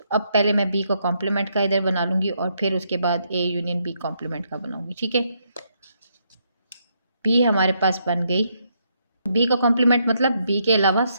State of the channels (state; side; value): inverted; both; correlation -0.76